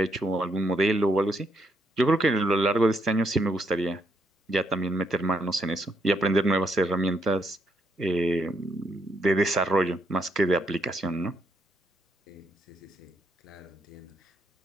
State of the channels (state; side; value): normal; both; correlation 0.75